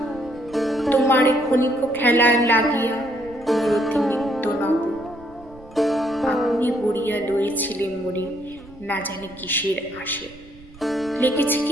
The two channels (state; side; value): noise; right; rumble, 22 dB below the sound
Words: তোমার ক্ষণিক খেলায় লাগিয়া মূরতি নিত্য নব। আপনি বড়িয়া লয়েছিলেন মরে না জানি কিসের আসে, লেগেছে